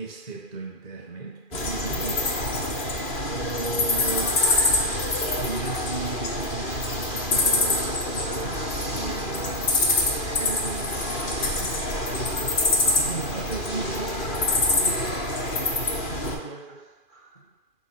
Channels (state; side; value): late; right; 2.4 ms